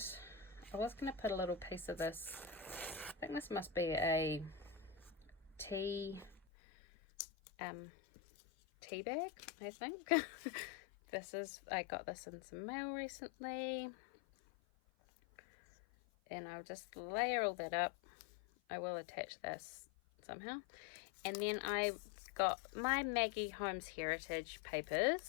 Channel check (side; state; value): right; drops out; at 6.5 s